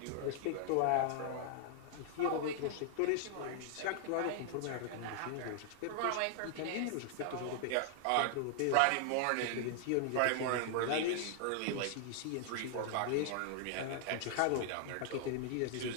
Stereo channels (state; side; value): different; both; correlation 0.00